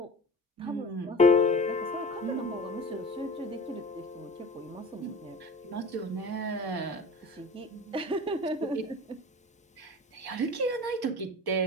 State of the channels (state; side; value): normal; both; correlation 0.37